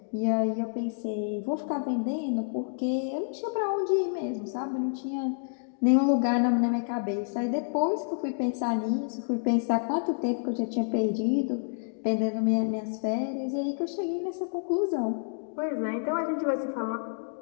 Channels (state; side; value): silent; right; digital silence